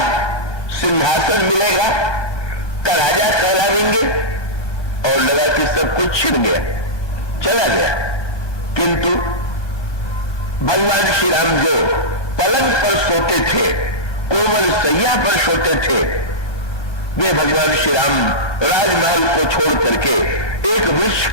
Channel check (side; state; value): right; late; 1.2 ms